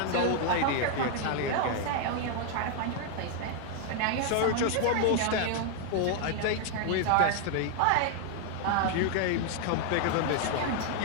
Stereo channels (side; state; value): both; different; correlation 0.00